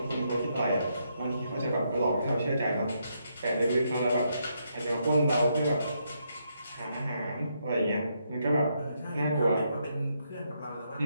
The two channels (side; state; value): both; inverted; correlation -0.77